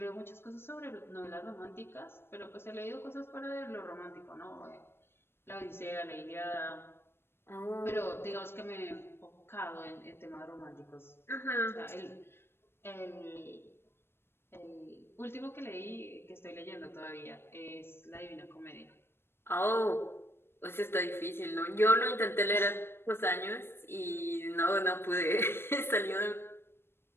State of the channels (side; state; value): right; late; 0.11 ms